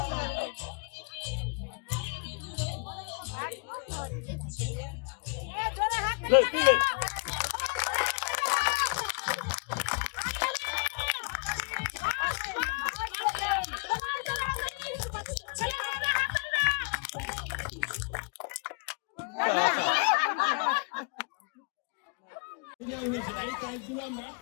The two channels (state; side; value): quieter; right; 33.0 dB